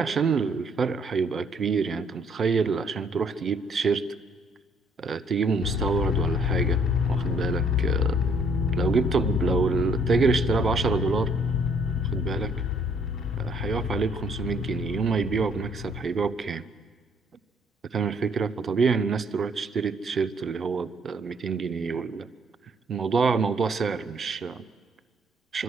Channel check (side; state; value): both; normal; correlation 0.64